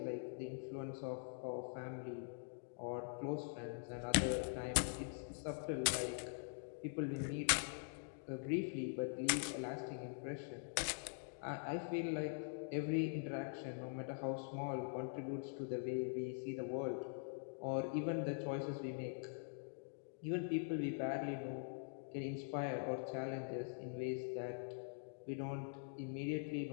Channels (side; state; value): right; silent; digital silence